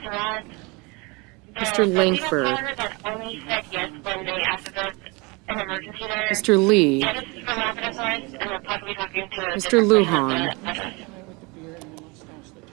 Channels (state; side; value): quieter; left; 27.6 dB